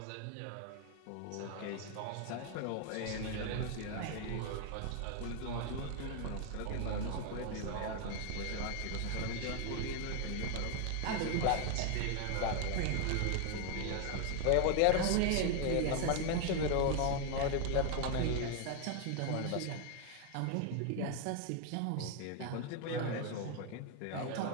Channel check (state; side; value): different; both; correlation 0.01